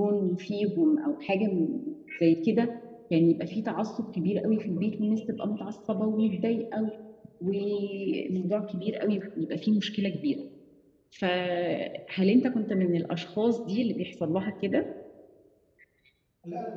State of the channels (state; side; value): identical; both; correlation 1.00